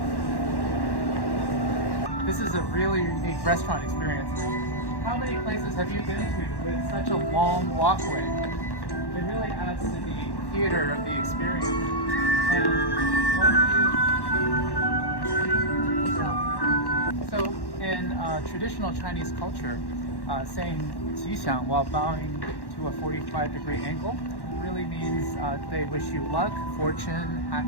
This is a really unique restaurant experience. How many places have you been to with such a long walkway? It really adds to the theater of the experience. And so in traditional Chinese culture, saying 吉祥 while bowing to a 45-degree angle really means they wish you luck, fortune,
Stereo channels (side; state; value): right; late; 1.1 ms